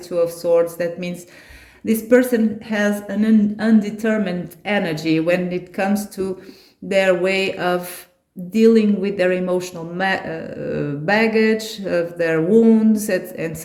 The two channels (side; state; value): both; identical; correlation 1.00